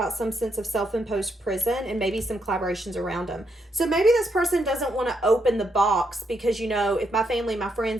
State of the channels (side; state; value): both; normal; correlation 0.78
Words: some sense of self-imposed prison and maybe some collaborations around them. So maybe this person doesn't want to open the box because, you know, if my family, my